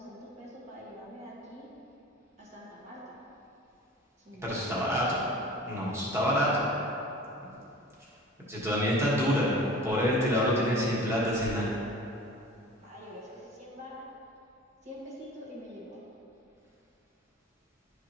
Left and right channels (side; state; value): both; normal; correlation 0.42